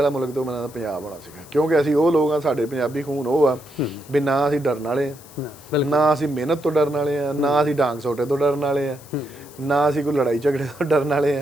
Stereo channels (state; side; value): noise; left; hiss, 21 dB below the sound